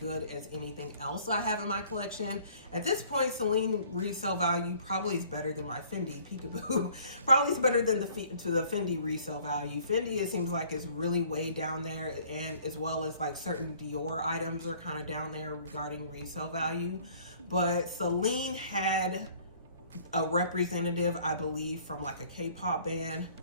as anything else I have in my collection. At this point, Celine resale value probably is better than my Fendi Peekaboo. Probably is better than the Fendi resale value. Fendi, it seems like, is really way down there, and as well as like certain Dior items are kind of down there regarding resale value. But Celine had a representative, I believe, from like a K-pop band.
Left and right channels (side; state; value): both; inverted; correlation -0.55